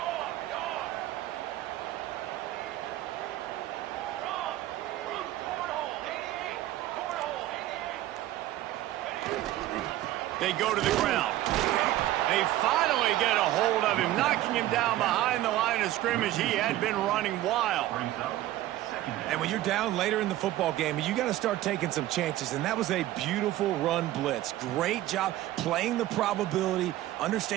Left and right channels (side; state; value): left; quieter; 14.8 dB